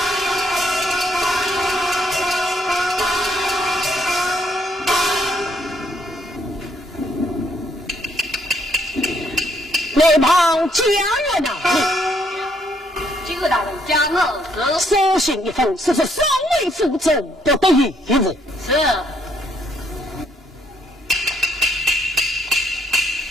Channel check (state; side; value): normal; both; correlation 0.71